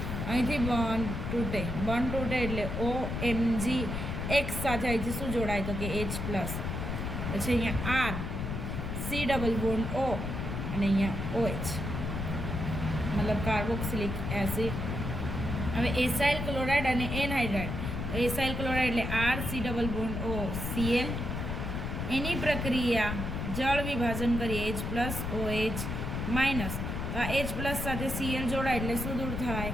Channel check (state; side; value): noise; left; rumble, 3 dB below the sound